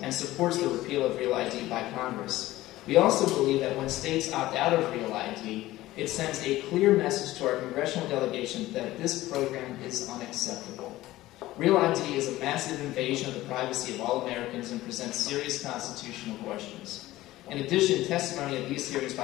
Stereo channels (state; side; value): quieter; right; 16.6 dB